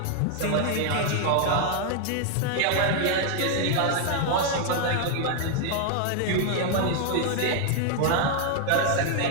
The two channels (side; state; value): both; different; correlation 0.00